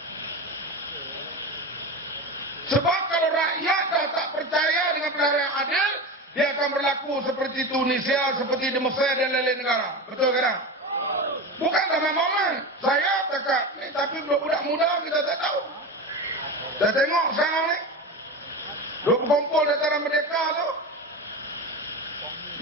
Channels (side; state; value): both; normal; correlation 0.24